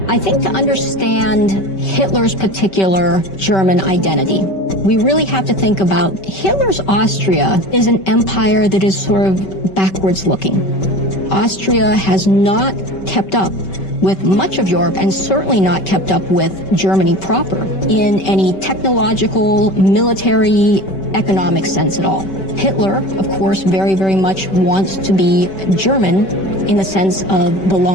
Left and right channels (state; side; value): late; right; 5.2 ms